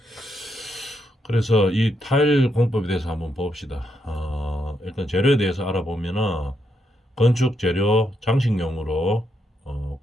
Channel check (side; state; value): both; normal; correlation 0.80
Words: 그래서 이 타일 공법에 대해서 한번 봅시다. 일단 재료에 대해서 알아보면은 건축 재료 장식용으로